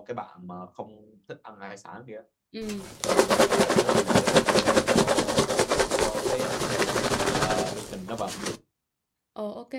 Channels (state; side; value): identical; both; correlation 1.00